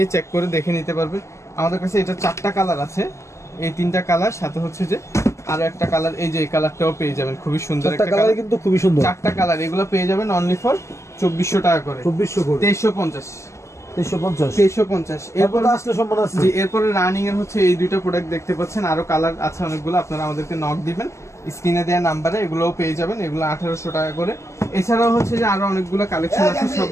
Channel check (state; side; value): late; right; 0.14 ms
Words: চেক করে দেখে নিতে পারবে। আমাদের কাছে এটা 4টা কালার আছে, এই 3টা কালার, সাথে হচ্ছে যে আরো একটা কালার, এই যে এই কালারটাও পেয়ে যাবেন, খুবই সুন্দর একটা কালার, কিন্তু খুবই সুন্দর। 4টা কালার, এগুলো পেয়ে যাবেন অনলি ফর 2400 টাকা করে। 2400 করে, 2350, 2350, 2350। এরপর আসলে সম্মান আছে। জি, এরপরে রানিং এর হচ্ছে এই দুইটা প্রোডাক্ট দেখতে পাচ্ছেন, আরো কালার আছে অনেকগুলো, আপনারা আমাদেরকে নক দিবেন স্ক্রিনে দেওয়া নাম্বারে, এগুলোও পেয়ে যাবেন, এগুলো 1800 টাকা করে। এছাড়াও হচ্ছে যে আরো অনেকগুলো কালেকশন আছে,